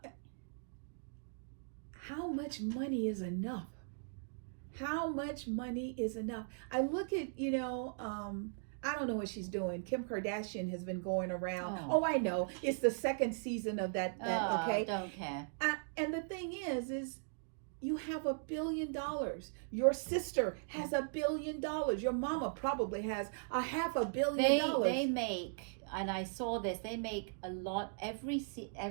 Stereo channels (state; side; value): silent; left; digital silence